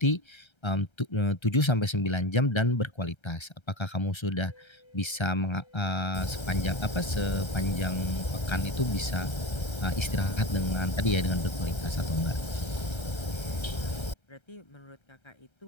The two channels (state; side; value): late; right; 1.3 ms